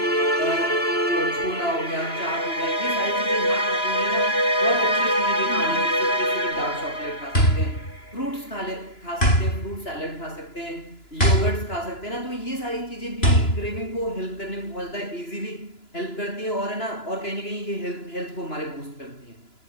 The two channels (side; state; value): right; late; 2.9 ms